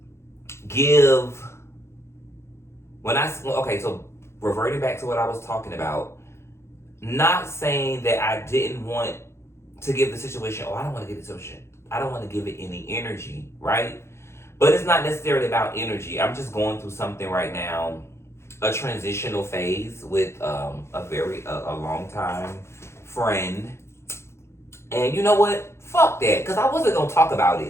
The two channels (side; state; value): right; late; 0.13 ms